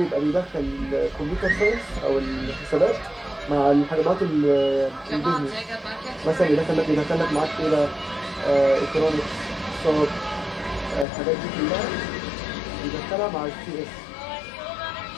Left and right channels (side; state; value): right; drops out; at 11.1 s